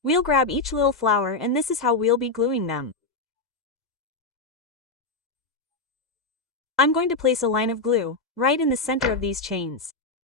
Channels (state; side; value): quieter; right; 3.4 dB